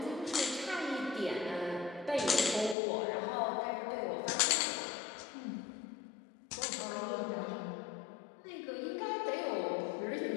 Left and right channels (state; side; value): drops out; right; at 2.8 s